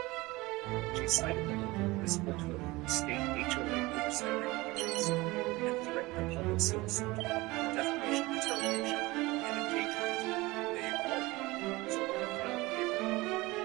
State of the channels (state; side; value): quieter; left; 21.4 dB